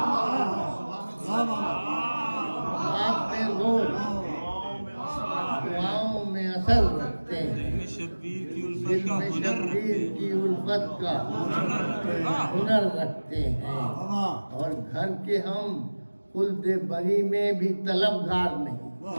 بات میں زور دعاؤں میں اثر رکھتے ہیں، دل میں شبیر کی الفت کا ہنر رکھتے ہیں، اور گھر کے ہم خلد بری میں بھی طلبگار نہیں،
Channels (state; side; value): inverted; both; correlation -1.00